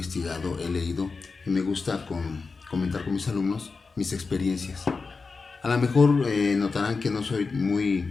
he leído y me gusta comentar con mis alumnos mis experiencias. A lo mejor notarán que no soy muy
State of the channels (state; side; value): quieter; right; 4.4 dB